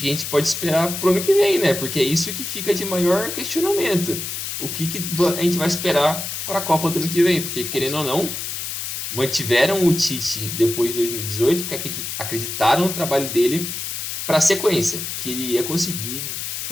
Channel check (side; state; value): left; noise; hiss, 5 dB below the sound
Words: que a gente pode esperar pro ano que vem, né? Porque é isso que fica de maior questionamento. O que que a gente vai esperar para a Copa do ano que vem? Porque, querendo ou não, mantiveram o Tite depois de 2018, porque acreditaram no trabalho dele para a sequência, que ele ia conseguir